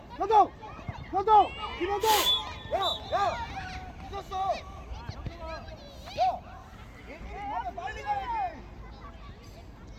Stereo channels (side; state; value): both; identical; correlation 1.00